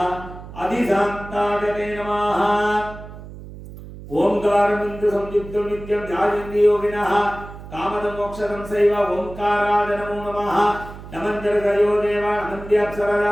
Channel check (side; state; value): right; noise; hum, 14 dB below the sound